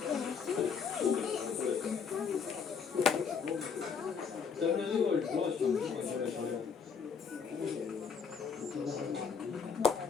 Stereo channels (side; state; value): right; quieter; 6.2 dB